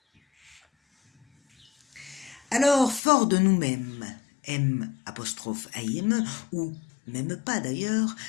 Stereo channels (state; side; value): drops out; right; at 3.0 s